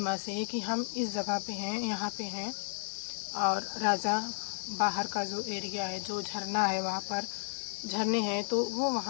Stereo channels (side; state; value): right; silent; digital silence